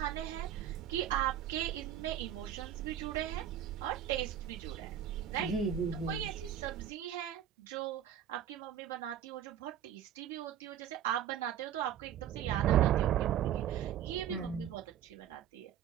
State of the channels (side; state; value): left; quieter; 10.3 dB